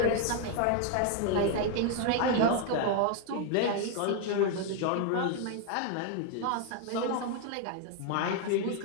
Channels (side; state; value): both; different; correlation 0.00